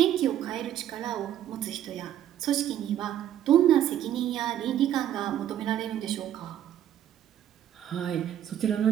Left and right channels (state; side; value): quieter; left; 11.1 dB